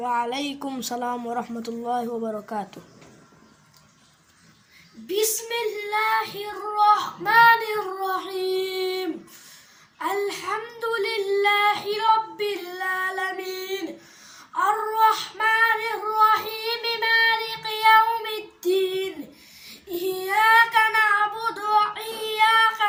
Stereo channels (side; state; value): both; identical; correlation 1.00